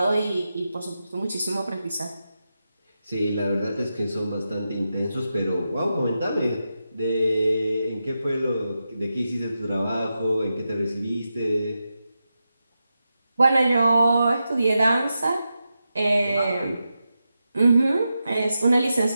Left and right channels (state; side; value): inverted; both; correlation -0.89